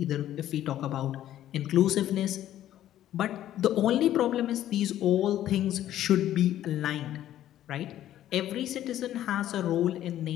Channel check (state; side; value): quieter; right; 12.4 dB